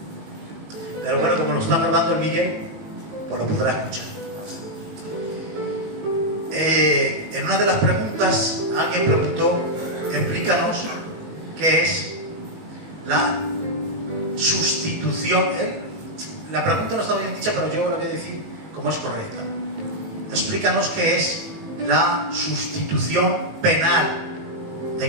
pero bueno, como lo está grabando el Miguel, pues lo podrá escuchar. En una de las preguntas alguien preguntó, explícanos qué es la sustitución. La pregunta no está bien dicha, pero yo la voy a decir como es correcta. Explícanos qué es la sustitución penal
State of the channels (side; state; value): left; late; 19 ms